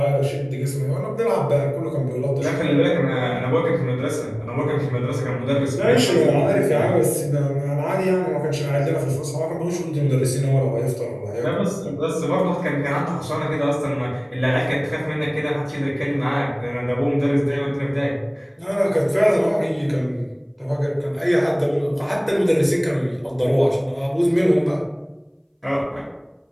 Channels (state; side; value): identical; both; correlation 1.00